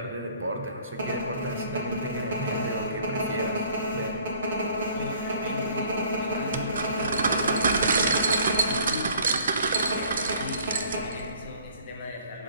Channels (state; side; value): inverted; both; correlation -0.55